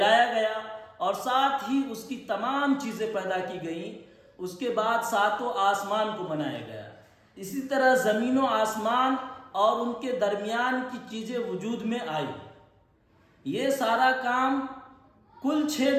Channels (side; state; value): both; identical; correlation 1.00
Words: گیا اور ساتھ ہی اس کی تمام چیزیں پیدا کی گئیں۔ اس کے بعد ساتوں آسمان کو بنایا گیا۔ اسی طرح زمین و آسمان اور ان کے درمیان کی چیزیں وجود میں آئی۔ یہ سارا کام کل 6